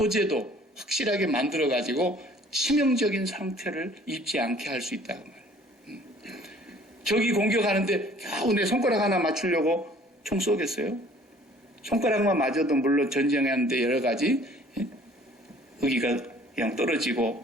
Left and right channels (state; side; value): normal; both; correlation 0.54